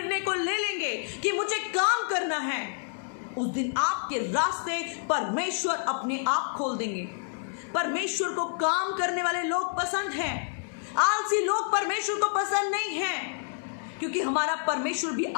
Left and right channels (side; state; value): right; silent; digital silence